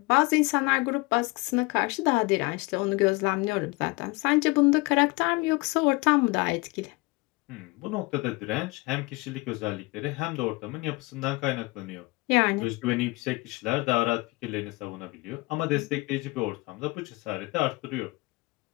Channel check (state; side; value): quieter; right; 24.4 dB